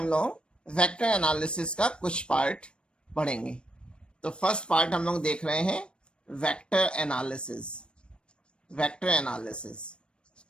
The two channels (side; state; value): right; late; 0.056 ms